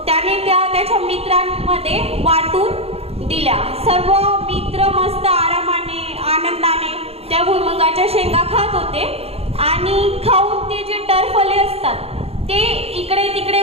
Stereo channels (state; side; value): late; left; 0.29 ms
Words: त्याने त्याच्या मित्रांमध्ये वाटून दिल्या. सर्व मित्र मस्त आरामाने आनंदाने त्या भुईमुगाच्या शेंगा खात होते आणि खाऊन ते जे टरफले असतात ते इकडे तिकडे